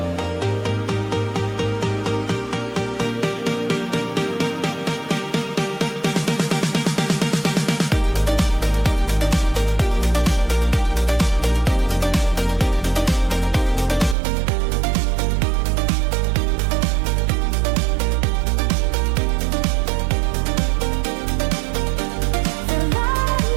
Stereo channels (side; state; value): left; drops out; at 14.2 s